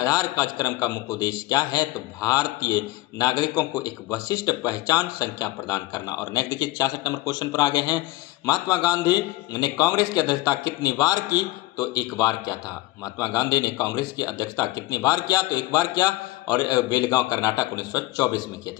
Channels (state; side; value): quieter; right; 18.6 dB